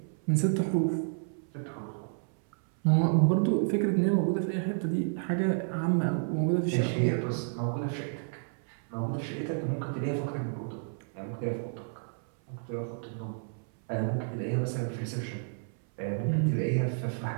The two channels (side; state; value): left; silent; 57 dB below the other